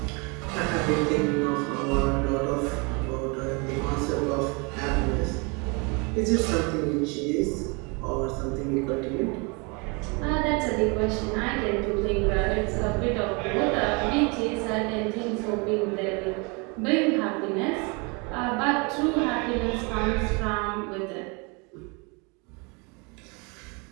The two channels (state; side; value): quieter; left; 30.6 dB